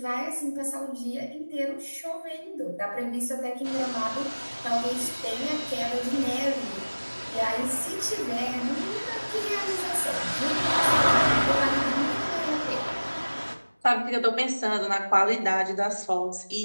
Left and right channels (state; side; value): inverted; both; correlation -1.00